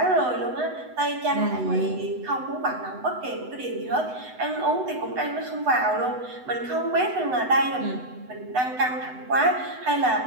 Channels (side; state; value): left; late; 8.0 ms